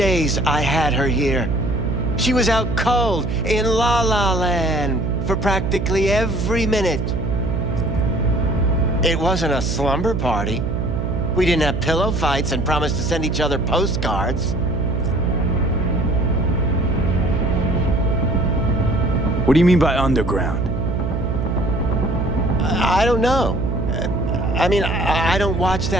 I had her here. She was out cold in La La Land, for practically every minute. It wasn't a slumber party. We didn't have pillow fights and promised to send each other postcards. What do you mean by underground? I don't know. I mean, I don't watch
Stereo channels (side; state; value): right; noise; hum, 1 dB below the sound